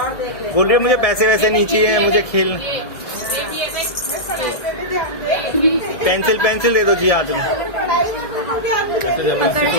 बोल रही है मुझे पैसे वैसे नहीं चाहिए, मुझे खेल। पेंसिल दे दो जी हाथ में।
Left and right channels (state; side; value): late; right; 1.7 ms